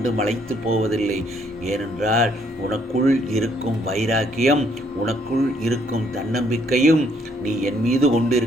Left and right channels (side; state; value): both; normal; correlation 0.68